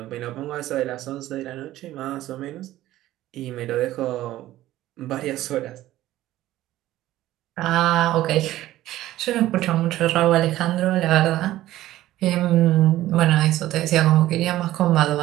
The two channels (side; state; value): left; quieter; 14.9 dB